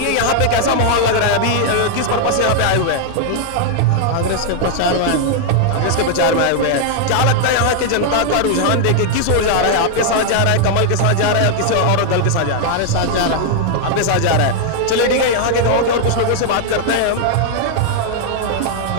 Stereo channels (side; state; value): both; different; correlation 0.00